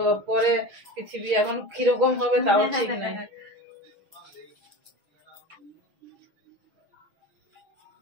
পরে পৃথিবী এখন কিরকম হবে তাও ঠিক নাই।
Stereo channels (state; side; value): late; left; 6.1 ms